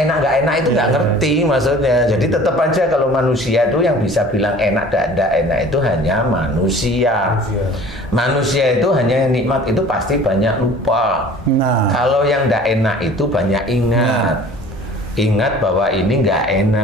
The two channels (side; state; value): both; normal; correlation 0.46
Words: nggak enak itu nggak ngerti maksudnya. Jadi tetap aja kalau manusia itu yang bisa bilang enak dan tidak enak itu hanya manusia. Manusia itu hanya nikmat itu pasti banyak lupa. Nah. Kalau yang tidak enak itu banyak ingat. Ingat bahwa ini nggak